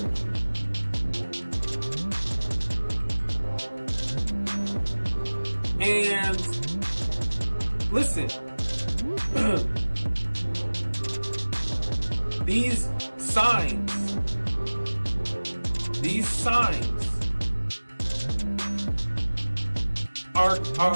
you. And listen, these signs are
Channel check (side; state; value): both; inverted; correlation -1.00